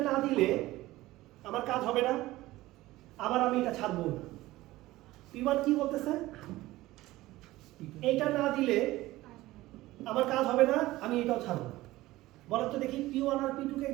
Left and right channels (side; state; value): left; quieter; 17.6 dB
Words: না দিলে আমার কাজ হবে না, আবার আমি এটা ছাড়বো না। P1 কি বলতেছে? এইটা না দিলে আমার কাজ হবে না, আমি এটাও ছাড়বো। বলার তো দেখি P1 আর P2 কে